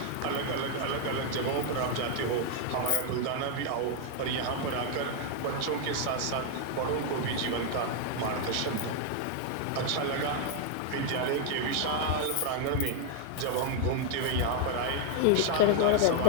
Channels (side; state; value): both; different; correlation 0.00